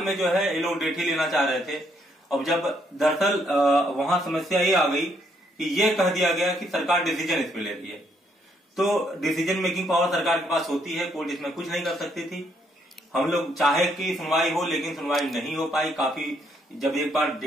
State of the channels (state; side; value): normal; both; correlation 0.72